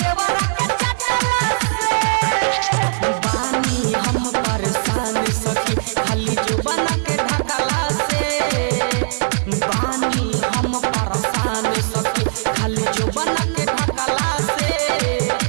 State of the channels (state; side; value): silent; left; 55 dB below the other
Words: हम परेशान सखी खाली जुबान के ढकला से बानी हम परेशान सखी खाली जुबान के ढकला से